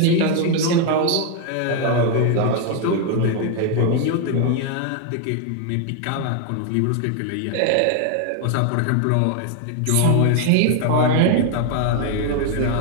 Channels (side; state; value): both; different; correlation 0.01